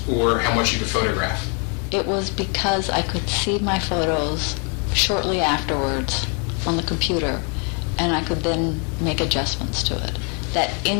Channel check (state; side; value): quieter; right; 37.6 dB